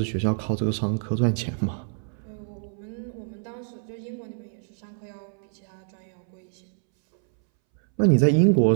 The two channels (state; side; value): silent; left; 61 dB below the other